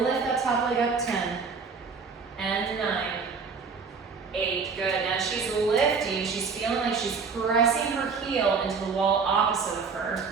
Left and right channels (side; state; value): left; quieter; 5.2 dB